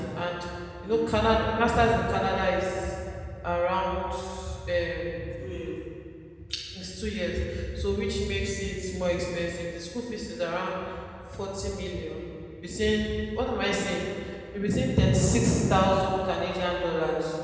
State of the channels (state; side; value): identical; both; correlation 1.00